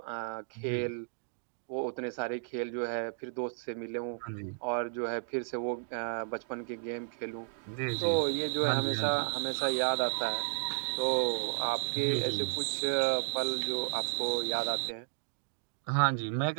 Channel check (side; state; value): left; silent; digital silence